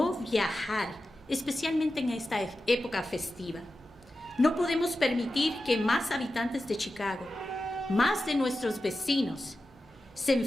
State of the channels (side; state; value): both; normal; correlation 0.92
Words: viajar, especialmente en esta época festiva. No podemos permitir que más habitantes de Chicago, más de nuestros vecinos, se